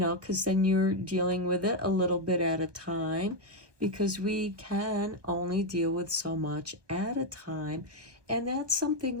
then you're dealing with it a little bit at a time, because we can only deal with so much at a time. And that's something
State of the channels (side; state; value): left; late; 1.2 ms